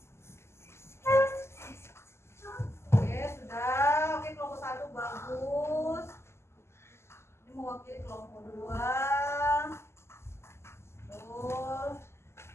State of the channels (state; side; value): late; right; 0.13 ms